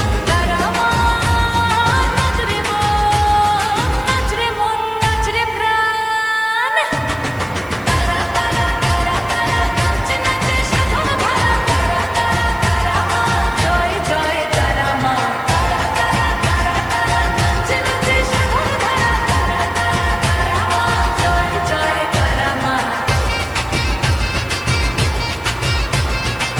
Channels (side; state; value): right; noise; hiss, 26 dB below the sound